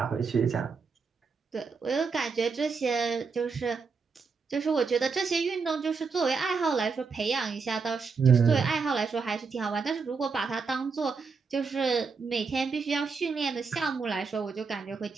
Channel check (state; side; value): quieter; left; 5.1 dB